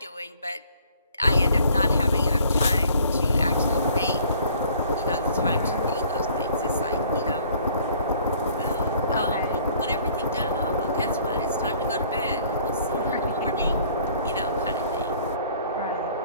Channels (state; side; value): inverted; both; correlation -0.57